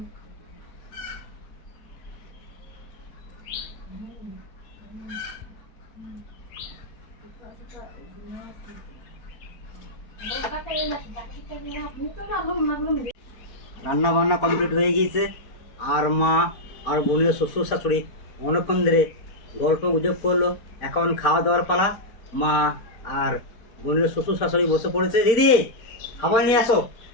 রান্না বান্না কমপ্লিট হয়ে গিয়েছে, আর মা আর বোনের শ্বশুর শাশুড়ি অনেকক্ষণ ধরে গল্প গুজব করলো। এখন খাওয়া দাওয়ার পালা। মা আর বোনের শ্বশুর শাশুড়ি বসে পড়েছে। দিদি, খাবার নিয়ে আসো।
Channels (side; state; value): right; late; 4.4 ms